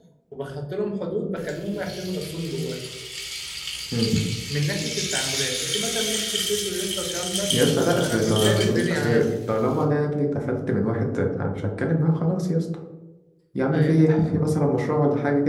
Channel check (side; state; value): both; identical; correlation 1.00